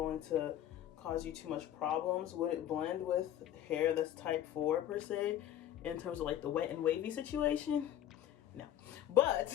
to cause you too much problems. Would it blend with hair that's type 4 per se, in terms of like the wet and wavy situation? No, but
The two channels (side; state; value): right; quieter; 11.5 dB